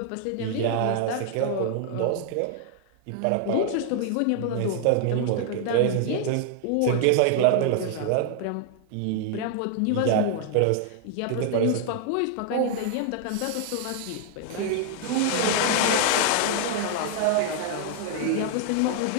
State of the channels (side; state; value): both; different; correlation 0.00